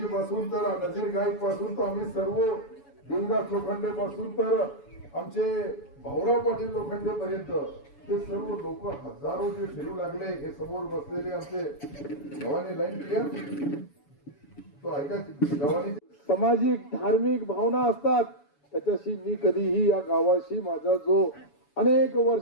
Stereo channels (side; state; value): right; late; 7.0 ms